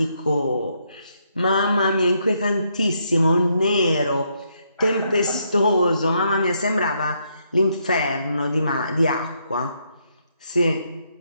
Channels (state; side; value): inverted; both; correlation -0.75